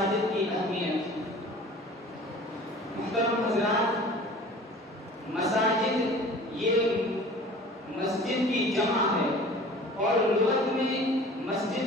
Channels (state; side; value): normal; both; correlation 0.45